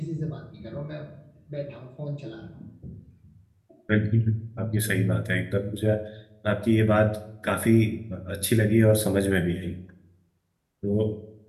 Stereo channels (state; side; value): identical; both; correlation 1.00